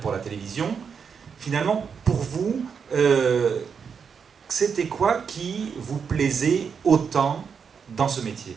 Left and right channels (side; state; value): left; quieter; 6.4 dB